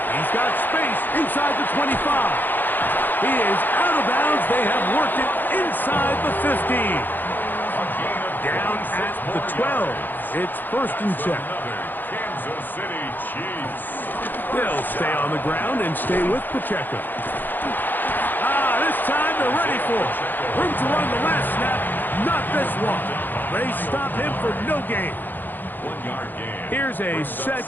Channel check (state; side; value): late; right; 0.090 ms